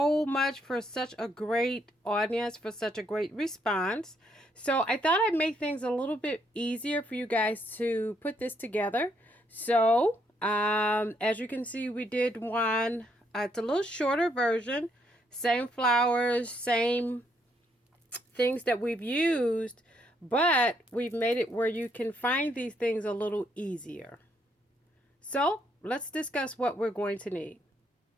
much for such a great audience, for such a great response. So I thought I'd make things a little bit easier for you guys to put this together. So as you can see, we did one. It's a little shorter version. Same flowers, same things that we've used, but we've made it where you can find these things a little easier. So let's discuss what we're going to need.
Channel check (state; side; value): normal; both; correlation 0.73